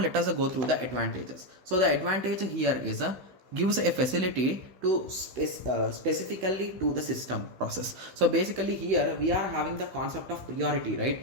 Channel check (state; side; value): late; left; 15 ms